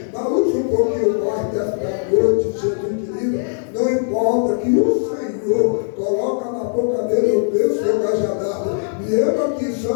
mas usa um pouquinho mais desta noite, Jesus querido, não importa que o Senhor coloca na boca dele o bênção e o cajadado, e eu aqui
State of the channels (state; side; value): silent; right; digital silence